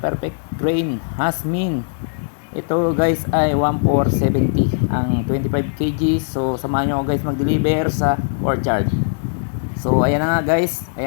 grain Hasmin. Ito guys ay 1470 ang 25 kg. So samahan nyo ako guys mag-deliver sa courtyard. So ayan na nga guys,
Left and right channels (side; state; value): right; silent; 66 dB below the other